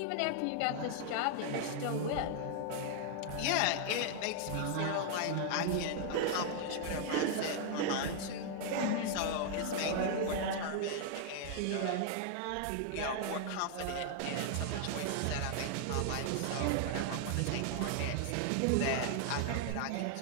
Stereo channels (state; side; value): different; both; correlation 0.00